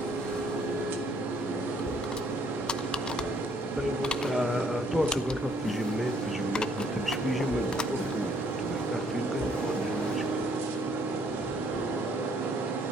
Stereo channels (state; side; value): normal; both; correlation 0.65